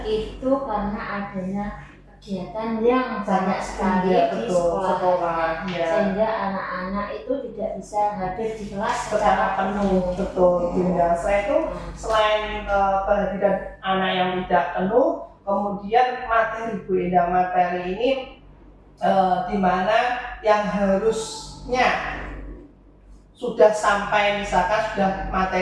itu karena adanya kegiatan yang banyak sekali di sekolah ya. Sehingga anak-anak itu tidak bisa hadir di kelas secara penuh. Betul Bunda. Saya itu selain kehadiran anak yang tidak penuh, kemudian materi Bu Endah, materi ini di mana yang harusnya sudah sampai misalkan sudah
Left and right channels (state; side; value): identical; both; correlation 1.00